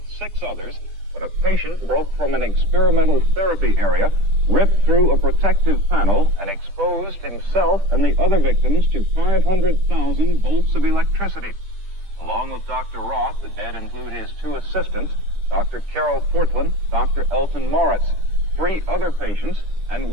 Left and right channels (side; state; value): left; late; 10 ms